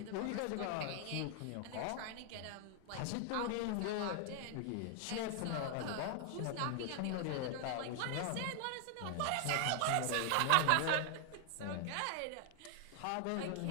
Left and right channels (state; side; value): different; both; correlation 0.00